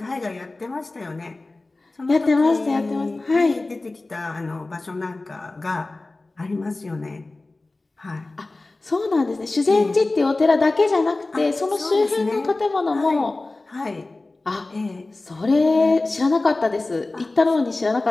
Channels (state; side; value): quieter; right; 3.1 dB